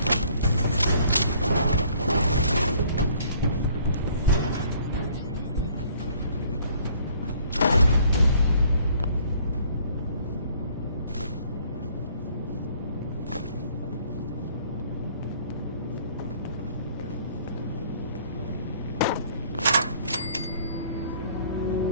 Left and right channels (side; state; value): both; inverted; correlation -0.59